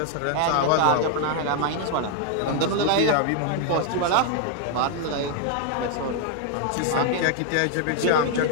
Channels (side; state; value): both; different; correlation 0.00